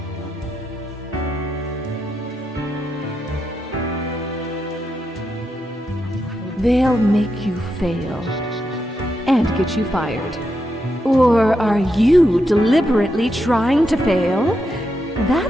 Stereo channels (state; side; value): normal; both; correlation 0.84